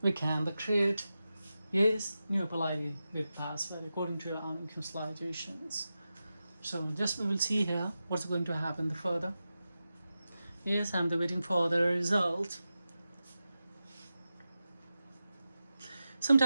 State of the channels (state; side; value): inverted; both; correlation -0.92